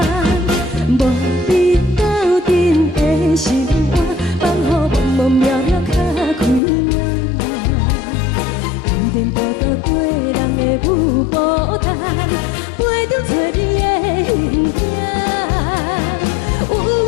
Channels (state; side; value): drops out; right; at 6.6 s